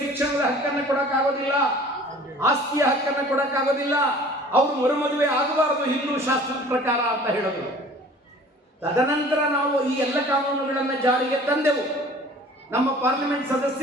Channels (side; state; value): both; normal; correlation 0.47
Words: ಶಿಕ್ಷಣದ ಹಕ್ಕನ್ನು ಕೊಡಕ್ಕಾಗೋದಿಲ್ಲ, ಆಸ್ತಿಯ ಹಕ್ಕನ್ನು ಕೊಡಕ್ಕಾಗೋದಿಲ್ಲ, ಅವರು ಮರುಮದುವೆ ಆಗಬಾರದು ಹಿಂದೂ ಶಾಸ್ತ್ರದ ಪ್ರಕಾರ ಅಂತ ಹೇಳಿದ್ರು. ತದನಂತರ ನಾವು ಈ ಎಲ್ಲ ಕಾನೂನುಗಳನ್ನು ಜಾರಿಗೆ ತಂದೆವು. ನಮ್ಮ ಪಾರ್ಲಿಮೆಂಟ್